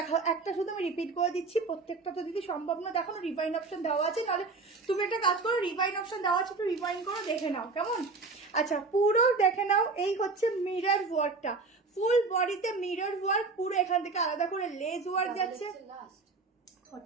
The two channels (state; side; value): quieter; left; 4.0 dB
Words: একটা শুধু আমি রিপিট করে দিচ্ছি, প্রত্যেকটা তো দিদি সম্ভব না দেখানো, রিভাইন অপশন দেওয়া আছে, নাহলে তুমি একটা কাজ করো, রিভাইন অপশন দেওয়া আছে একটু রিভাইন করো, দেখে নাও কেমন। আচ্ছা পুরো দেখে নাও, এই হচ্ছে মিরর ওয়ার্কটা, ফুল বডিতে মিরর ওয়ার্ক, পুরো এখান থেকে আলাদা করে লেজ ওয়ার্ক যাচ্ছে,